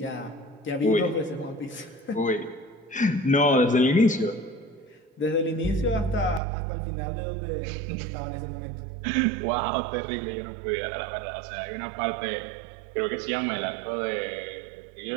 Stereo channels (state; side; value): drops out; left; at 6.4 s